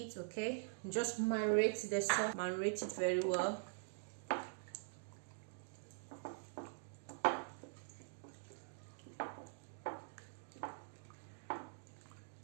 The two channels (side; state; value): left; silent; digital silence